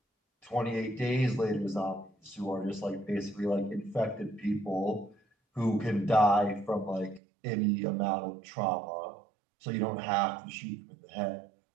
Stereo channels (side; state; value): left; drops out; at 7.2 s